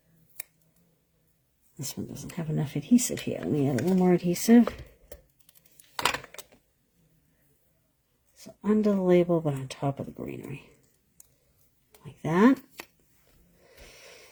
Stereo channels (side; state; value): both; identical; correlation 1.00